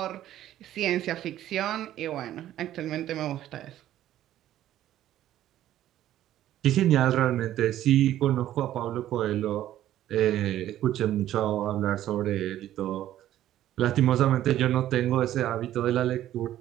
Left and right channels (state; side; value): quieter; left; 12.7 dB